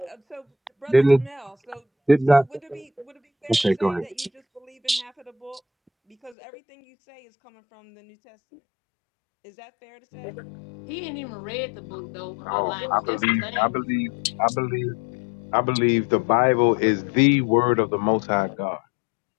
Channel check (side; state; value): right; drops out; at 6.4 s